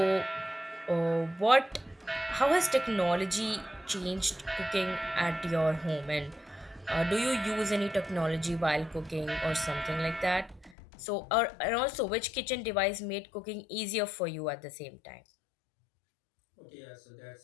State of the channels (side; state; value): right; drops out; at 10.8 s